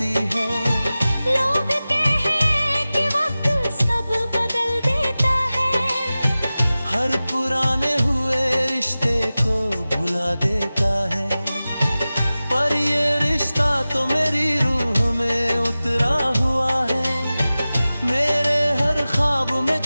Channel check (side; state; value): both; inverted; correlation -0.97